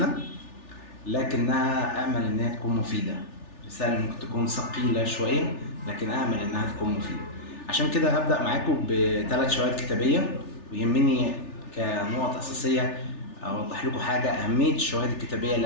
لكنها أمل إنها تكون مفيدة. رسالة ممكن تكون ثقيلة شوية لكن أمل إنها تكون مفيدة. عشان كده هبدأ معاكم ب3 شواهد كتابية، ويهمني كنقط أساسية أوضح لكم حاجة: أهمية الشواهد الكتابية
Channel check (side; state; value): right; late; 3.4 ms